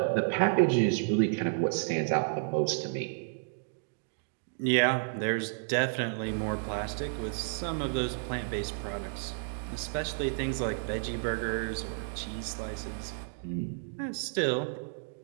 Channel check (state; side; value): silent; left; digital silence